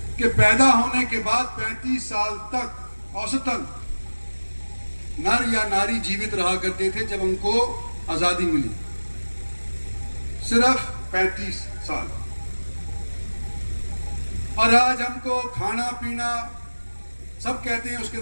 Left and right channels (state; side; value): inverted; both; correlation -1.00